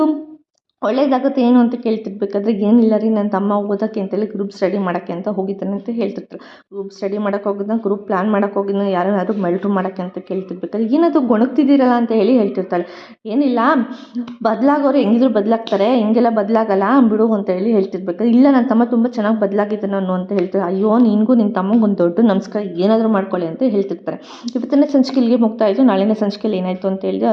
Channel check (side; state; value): both; identical; correlation 1.00